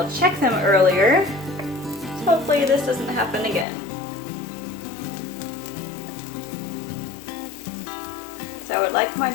check them earlier. So hopefully this doesn't happen again. So I would like my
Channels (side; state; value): right; drops out; at 3.7 s